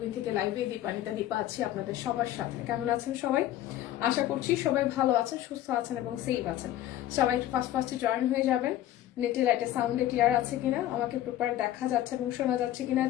থেকে লাইভে দীপানিতা দীপা আছি আপনাদের সবার সাথে। কেমন আছেন সবাই? আশা করছি সবাই ভালো আছেন, সুস্থ আছেন এবং সেফ আছেন। সবাই একটু ফার্স্টে জয়েন হয়ে যাবেন। নেটে লাইটে সাউন্ডে ক্লিয়ার আছে কিনা, আমাকে প্রপার দেখা যাচ্ছে এবং শোনা যাচ্ছে কিনা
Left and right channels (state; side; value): quieter; right; 13.1 dB